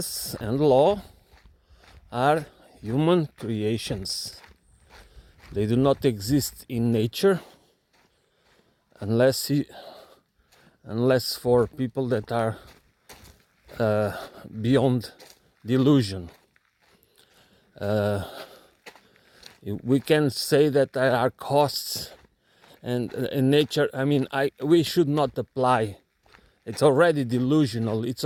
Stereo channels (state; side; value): identical; both; correlation 1.00